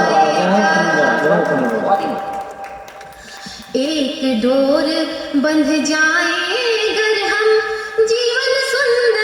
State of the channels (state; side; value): identical; both; correlation 1.00